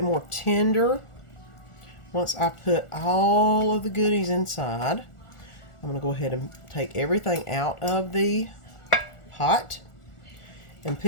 more tender. Once I put all of the goodies inside, I'm going to go ahead and take everything out of the pot and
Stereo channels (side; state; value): right; late; 1.4 ms